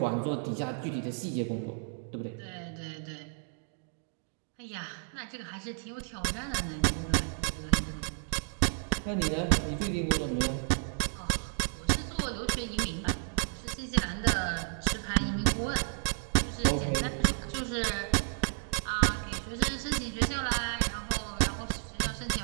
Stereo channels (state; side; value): silent; left; 56 dB below the other